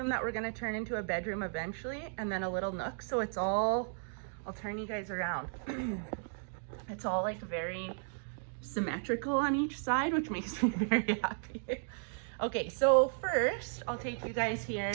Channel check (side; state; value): left; silent; digital silence